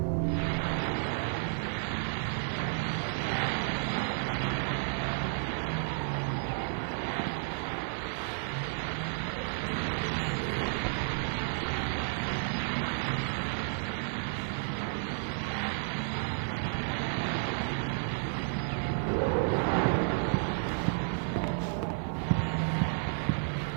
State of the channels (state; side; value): silent; left; digital silence